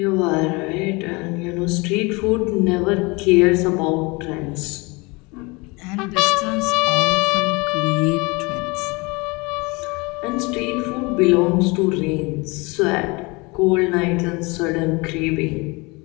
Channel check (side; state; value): right; quieter; 26.4 dB